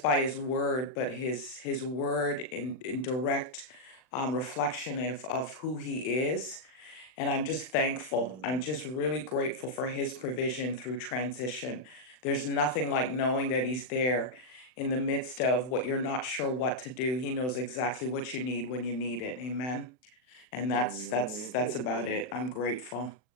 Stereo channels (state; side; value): late; right; 39 ms